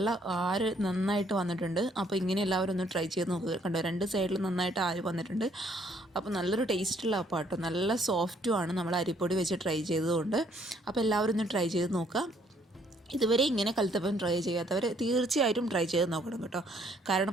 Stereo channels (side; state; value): both; normal; correlation 0.66